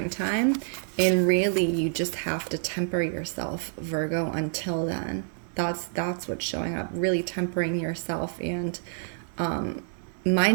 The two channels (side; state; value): left; silent; digital silence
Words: And really, you just have to temper yourself, Virgo, until then. That's what's showing up, really tempering yourself and